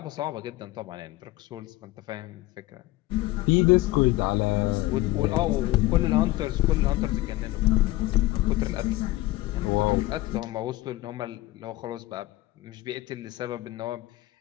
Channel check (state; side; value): quieter; right; 18.4 dB